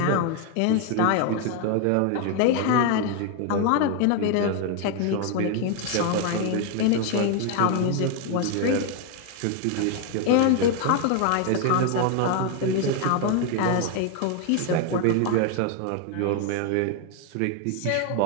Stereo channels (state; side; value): different; both; correlation 0.01